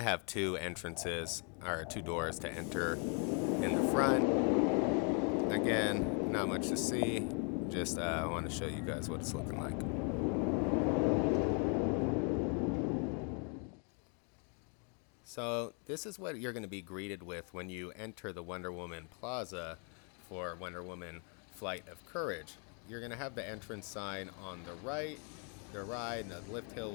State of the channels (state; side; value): quieter; right; 39.4 dB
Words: have two entrances, or two doors to enter in the front. Again, not much to see. Just I want to show you guys what it's looking like. So this is what you're going to be greeted with when you enter the Wonder Woman Plaza for Wonder Woman Flight of Courage. You're going to have the entrance sign on the right. The ride, the lift hill,